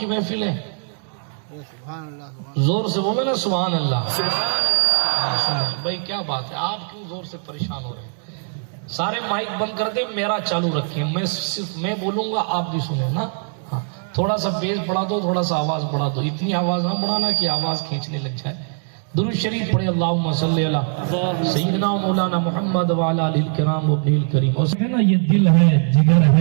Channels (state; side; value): silent; left; 58 dB below the other